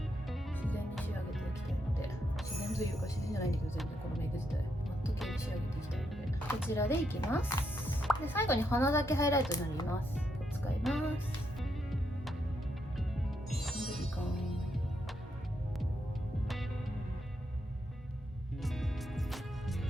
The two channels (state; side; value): normal; both; correlation 0.79